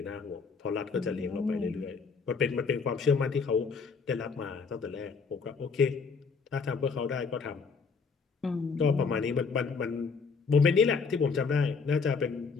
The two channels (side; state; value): right; quieter; 5.1 dB